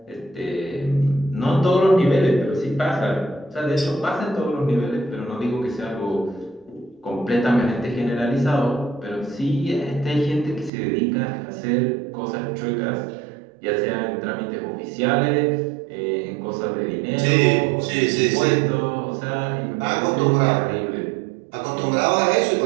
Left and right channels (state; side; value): drops out; left; at 10.7 s